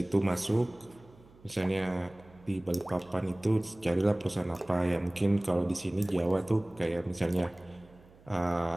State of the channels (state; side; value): noise; right; hum, 26 dB below the sound